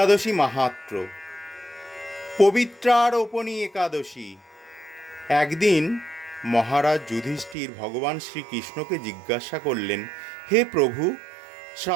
মাহাত্ম্য। পবিত্রারোপণী একাদশী। একদিন মহারাজ যুধিষ্ঠির ভগবান শ্রীকৃষ্ণকে জিজ্ঞাসা করলেন, হে প্রভু,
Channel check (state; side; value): drops out; left; at 7.6 s